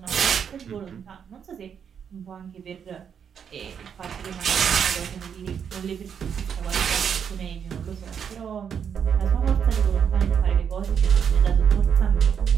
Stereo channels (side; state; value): left; quieter; 7.6 dB